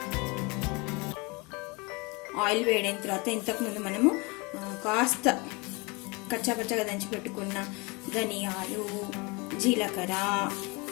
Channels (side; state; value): right; quieter; 27.7 dB